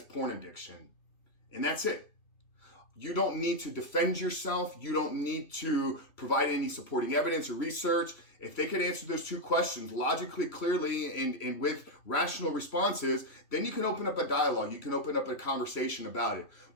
porn addiction? And that's it. You don't need to defend yourself. You don't need to provide any supporting evidence or research. If they could answer those 2 questions logically, clearly, and with rational responses, then you can open up a dialogue. You can open up a conversation about it.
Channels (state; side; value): late; right; 2.9 ms